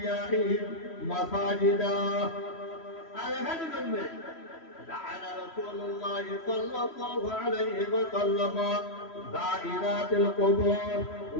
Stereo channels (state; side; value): late; right; 3.1 ms